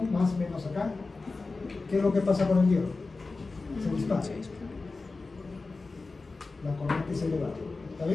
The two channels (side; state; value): right; quieter; 3.8 dB